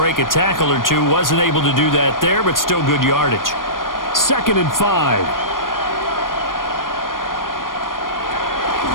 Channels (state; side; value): late; right; 0.90 ms